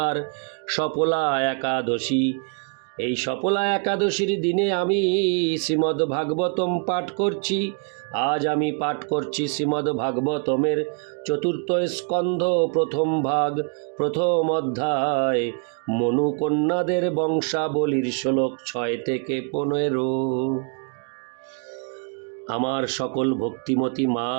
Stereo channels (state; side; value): quieter; left; 39.8 dB